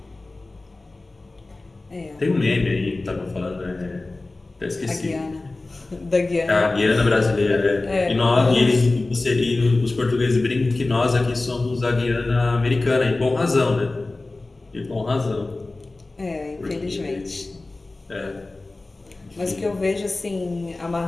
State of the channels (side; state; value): right; quieter; 3.2 dB